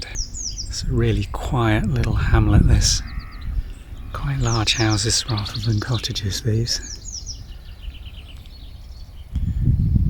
It's a really quiet little hamlet, this. Quite large houses rather than cottages, these.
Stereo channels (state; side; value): identical; both; correlation 1.00